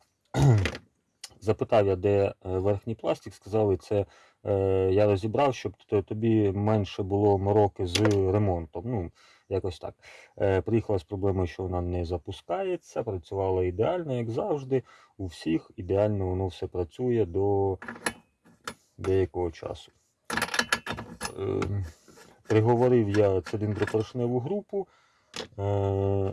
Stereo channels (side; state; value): both; identical; correlation 1.00